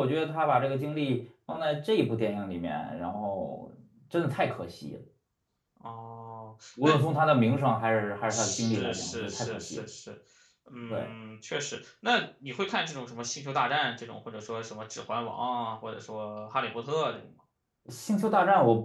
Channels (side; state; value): both; identical; correlation 1.00